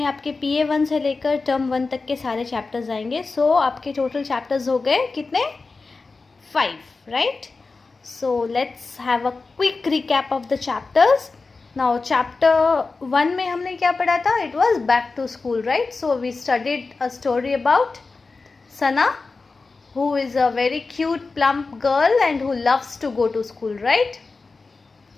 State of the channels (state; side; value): quieter; right; 4.0 dB